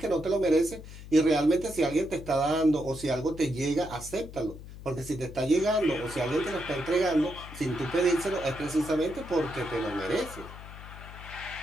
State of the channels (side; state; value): left; noise; hum, 14 dB below the sound